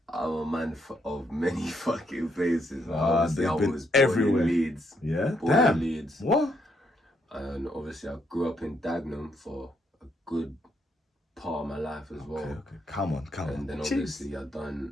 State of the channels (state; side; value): normal; both; correlation 0.75